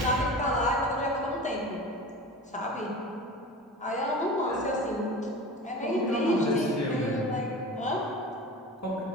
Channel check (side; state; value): both; normal; correlation 0.34